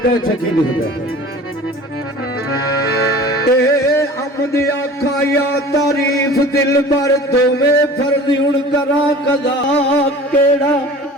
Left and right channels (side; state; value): both; normal; correlation 0.42